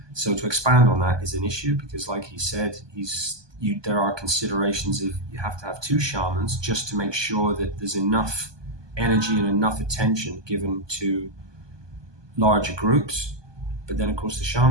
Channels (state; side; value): late; left; 1.2 ms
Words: So to expand on that is an issue, because like he said, there are considerations of you have to have 2 shamans just to make sure that there's enough energy and enough attention given to larger groups. But then of course the